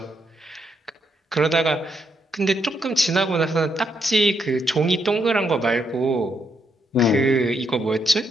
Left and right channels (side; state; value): both; normal; correlation 0.78